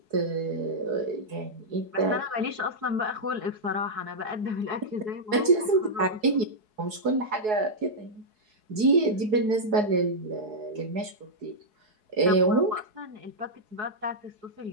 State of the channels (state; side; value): late; left; 4.7 ms